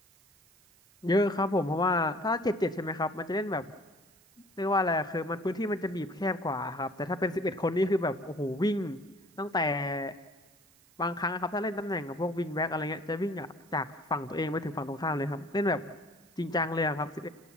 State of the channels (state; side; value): noise; right; hiss, 29 dB below the sound